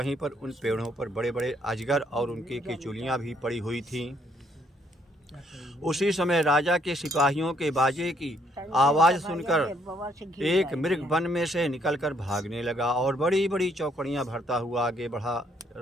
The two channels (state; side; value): normal; both; correlation 0.69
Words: पर उन पेड़ों पर बड़े बड़े अजगर और उनकी केचुलियां भी पड़ी हुई थीं। उसी समय राजा के सिपाहियों के बाजे की आवाज़ सुनकर एक मृग वन में से निकलकर भागने लगा और बड़ी बड़ी चौकड़ियां भरता हुआ आगे बढ़ा।